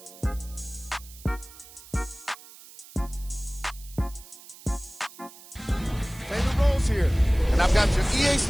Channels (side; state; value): right; noise; hiss, 19 dB below the sound